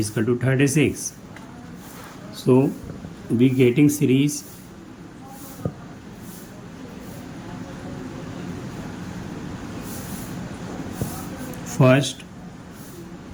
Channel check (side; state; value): both; identical; correlation 1.00